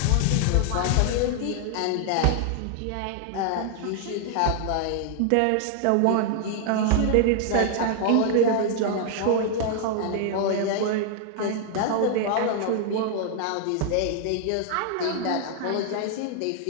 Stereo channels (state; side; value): different; both; correlation 0.00